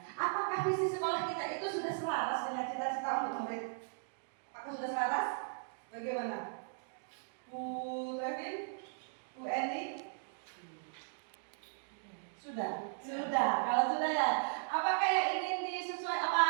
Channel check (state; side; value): silent; left; digital silence